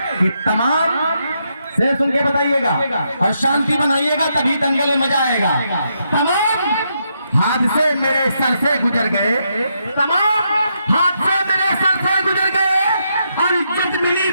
कि तमाम से सुन के बताइएगा और शांति बनाइएगा, तभी दंगल में मजा आएगा। तमाम हादसे मेरे सर से गुजर गए, तमाम हादसे मेरे सर से गुजर गए, और इज्जत मिली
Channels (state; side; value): inverted; both; correlation -0.80